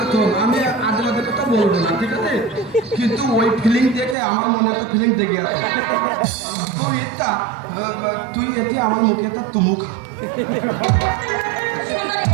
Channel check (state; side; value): drops out; left; at 4.2 s